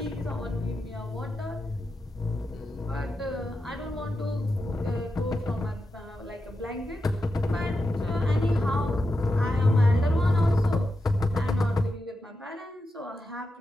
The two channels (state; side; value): normal; both; correlation 0.89